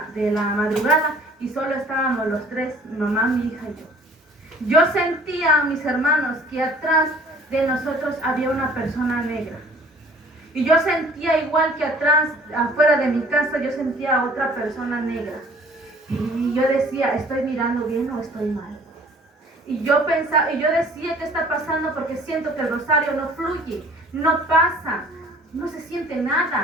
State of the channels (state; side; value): normal; both; correlation 0.52